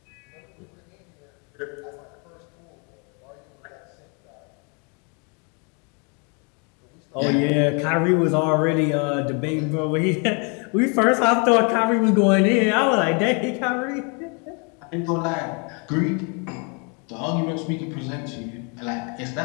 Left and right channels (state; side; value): quieter; right; 35.0 dB